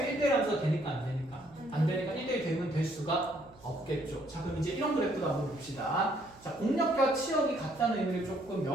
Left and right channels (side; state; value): right; noise; hum, 25 dB below the sound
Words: 1대1 함수가 되니까 안 되니까. 안 되니까 1대1 대응은 될 수가 없겠죠. 자, 그럼 이제 이런 그래프도 한번 봅시다. 자, 공력과 치역이 같다는 의미를 조금